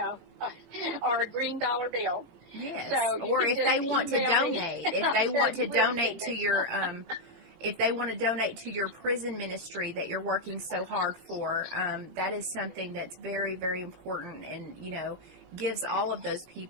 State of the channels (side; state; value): left; late; 17 ms